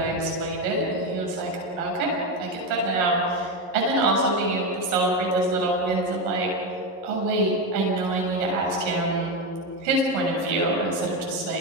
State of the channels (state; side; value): late; left; 11 ms